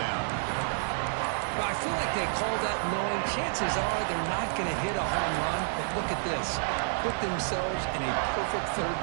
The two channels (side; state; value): left; silent; 58 dB below the other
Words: Well, I feel like they call that knowing chances are they're not going to hit a home run. But look at this. Put themselves in a perfect 3rd